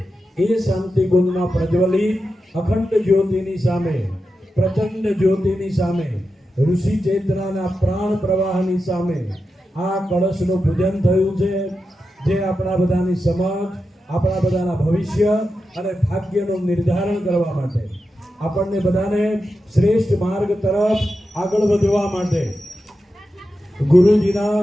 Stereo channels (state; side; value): normal; both; correlation 0.90